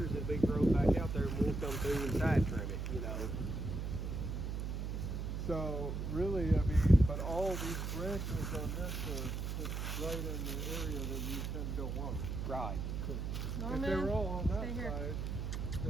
that big growth back out there, and we'll come through and side trim it, you know. So really, I mean, but all these branches on this are just right in the area that you don't want. Right. If they were all on that side,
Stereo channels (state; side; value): noise; right; hum, 3 dB below the sound